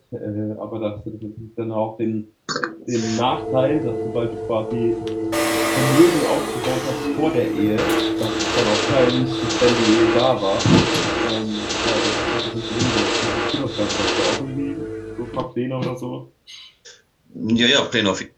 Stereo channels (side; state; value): both; identical; correlation 1.00